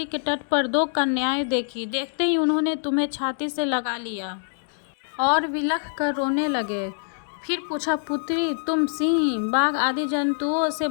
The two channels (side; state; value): right; silent; digital silence